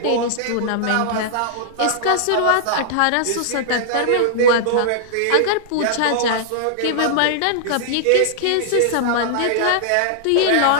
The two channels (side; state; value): both; different; correlation -0.01